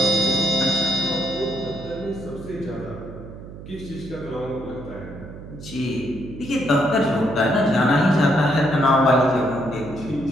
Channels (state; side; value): noise; right; hum, 14 dB below the sound